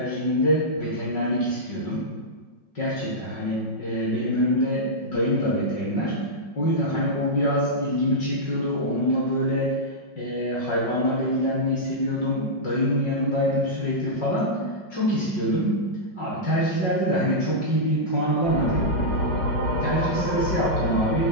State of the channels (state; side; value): late; right; 5.5 ms